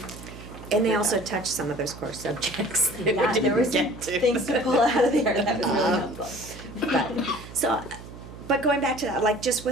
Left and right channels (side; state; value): right; noise; hum, 15 dB below the sound